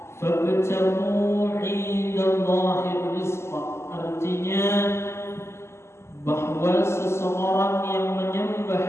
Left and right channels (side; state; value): right; late; 0.13 ms